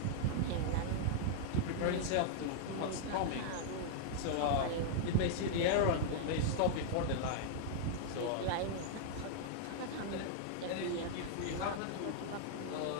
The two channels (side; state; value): both; different; correlation -0.01